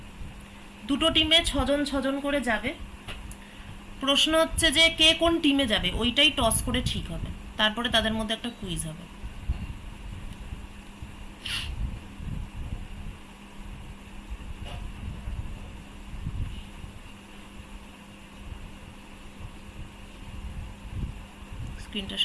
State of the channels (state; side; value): identical; both; correlation 1.00